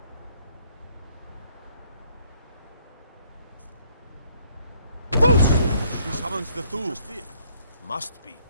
He summons the Thule. Must be.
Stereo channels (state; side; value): inverted; both; correlation -0.66